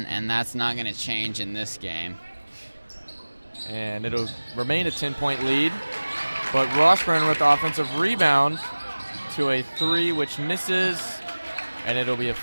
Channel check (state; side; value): inverted; both; correlation -1.00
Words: and that's not going to change in this game. And it'll remain a 10-point lead, but Washburn with the offensive rebound to a 3, which misses, and it'll be a